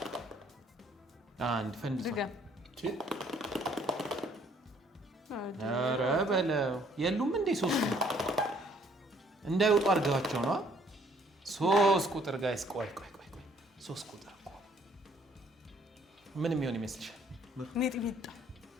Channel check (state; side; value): normal; both; correlation 0.62